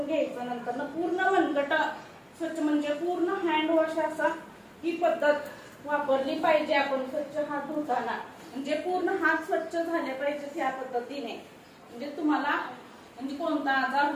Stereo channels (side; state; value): both; identical; correlation 1.00